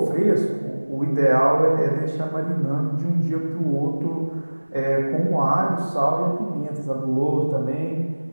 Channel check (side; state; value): both; inverted; correlation -1.00